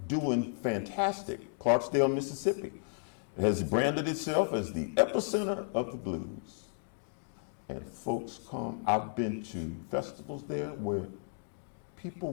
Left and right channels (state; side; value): silent; right; digital silence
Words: doing fantastic. Clarksdale, Mississippi has branded itself as the epicenter of the blues. And folks come, I've been to festivals there where people